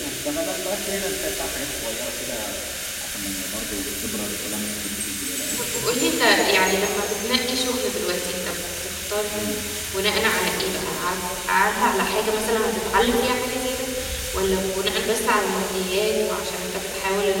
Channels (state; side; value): identical; both; correlation 1.00